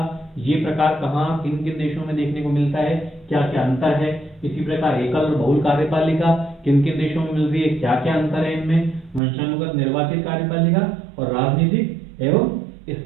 ये प्रकार कहाँ किन किन देशों में देखने को मिलता है, क्या क्या अंतर है। इसी प्रकार एकल और बहुल कार्यपालिका किन किन देशों में मिल रही है, क्या क्या अंतर है इनमें। वंशानुगत निर्वाचित कार्यपालिका और राजनीतिक एवं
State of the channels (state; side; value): drops out; left; at 9.2 s